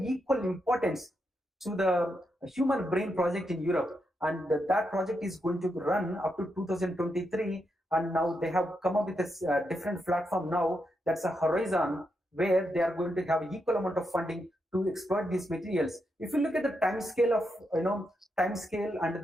equal importance to the human brain project in Europe, and that project is going to run up to 2023. And now they have come up with a different platform now, that's a Horizon, where they are going to have equal amount of funding to exploit these materials. If you look at the time scale of and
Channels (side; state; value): both; normal; correlation 0.83